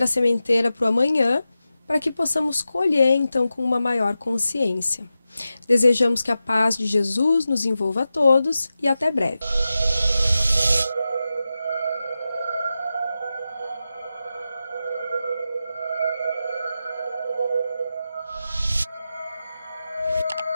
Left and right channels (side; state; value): both; inverted; correlation -0.92